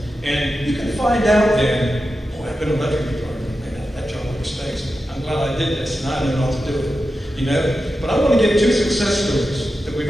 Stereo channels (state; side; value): normal; both; correlation 0.91